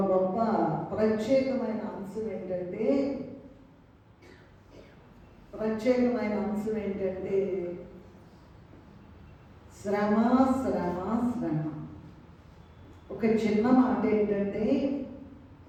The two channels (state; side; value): identical; both; correlation 1.00